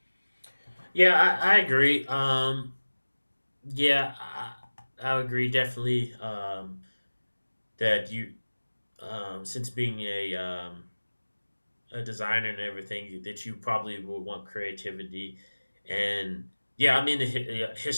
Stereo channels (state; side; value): inverted; both; correlation -1.00